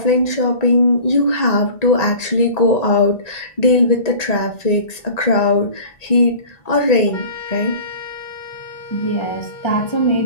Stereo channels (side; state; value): right; late; 1.8 ms